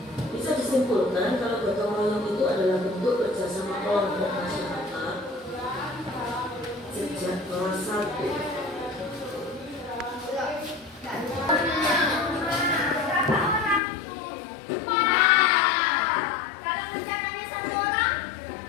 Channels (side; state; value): right; drops out; at 13.8 s